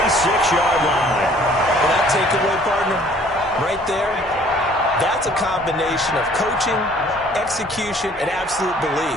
line. Well, that takeaway, partner, right there, that's a combination of coaching, execution, and absolute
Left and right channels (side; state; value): both; normal; correlation 0.56